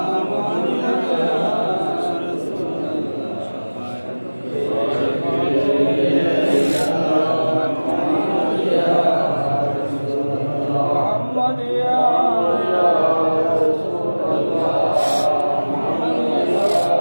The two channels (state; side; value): inverted; both; correlation -1.00